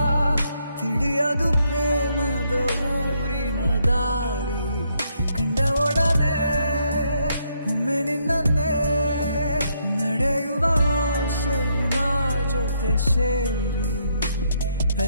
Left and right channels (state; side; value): inverted; both; correlation -0.74